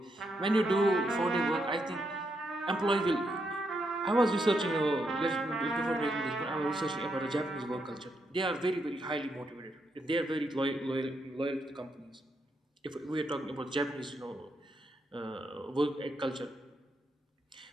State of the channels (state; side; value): normal; both; correlation 0.79